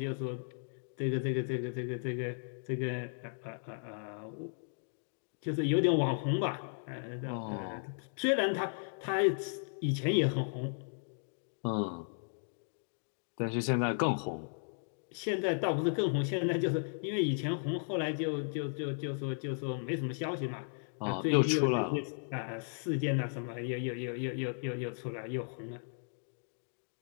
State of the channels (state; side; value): silent; right; digital silence